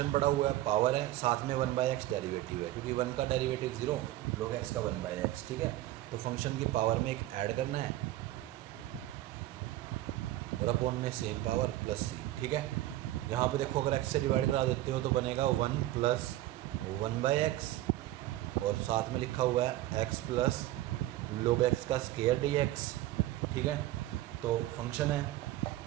पड़ा हुआ है, पावर है, साथ में 1/x डेरिवेटिव है, क्योंकि 1 का डेरिवेटिव 0, log x का 1/x, ठीक है। तो फंक्शन की पावर में एक ऐड करना है और अपॉन में सेम पावर प्लस सी, ठीक है। यहाँ पे देखो अगर x से डिवाइड करा देते हो तो बनेगा 1 + 1/x और साथ में लिखा हुआ है x प्लस log x का स्क्वायर dx, ठीक है। तो फंक्शन है,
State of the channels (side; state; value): left; quieter; 15.3 dB